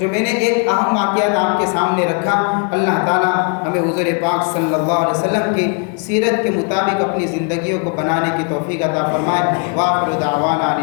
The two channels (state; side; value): quieter; right; 37.9 dB